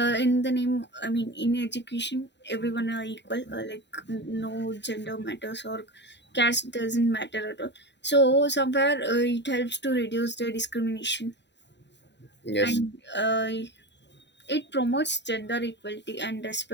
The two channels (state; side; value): late; right; 0.51 ms